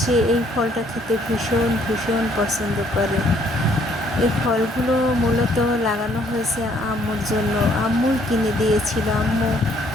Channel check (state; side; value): normal; both; correlation 0.65